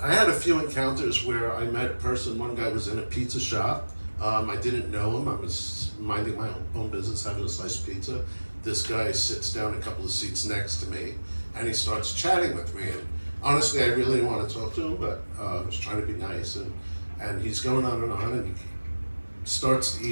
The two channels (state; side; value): inverted; both; correlation -1.00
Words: I had a few encounters where I met a person. One guy was in a pizza shop. I didn't know him. I was minding my own business, having a slice of pizza. This guy sits down a couple of seats next to me, and he starts chatting with me. And honestly, I really didn't want to talk to him, but I was trying to be nice. And he's going on, and he starts to